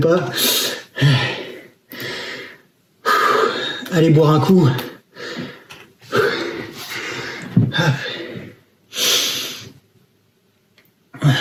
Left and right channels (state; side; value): identical; both; correlation 1.00